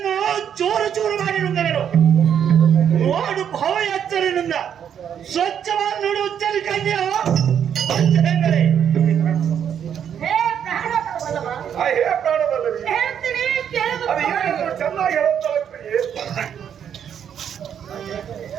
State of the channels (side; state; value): left; quieter; 8.7 dB